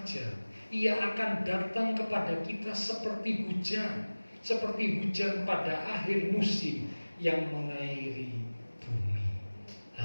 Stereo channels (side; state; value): both; inverted; correlation -1.00